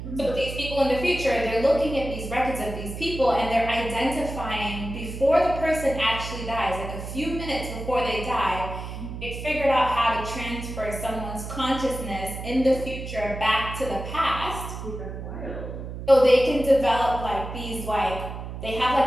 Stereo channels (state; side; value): noise; right; hum, 8 dB below the sound